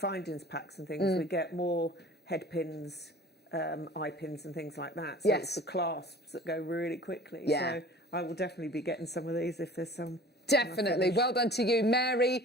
packs and things, we get more head pins, eye pins and things like that. So yes. It's the clasps that go really quickly. Yeah. So I will definitely be getting some of these if there's some. Definitely. Well done to you,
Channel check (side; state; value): both; normal; correlation 0.44